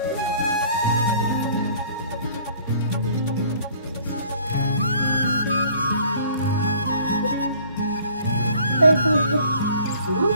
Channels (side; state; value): both; inverted; correlation -0.54